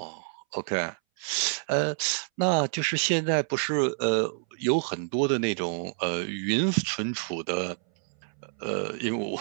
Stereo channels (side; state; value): left; silent; 59 dB below the other